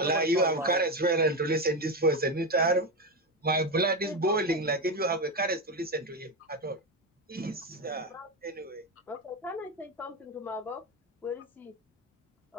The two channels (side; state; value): both; normal; correlation 0.13